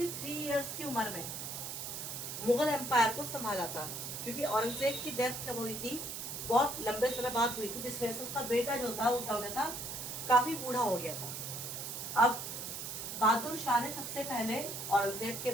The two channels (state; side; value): noise; right; hiss, 6 dB below the sound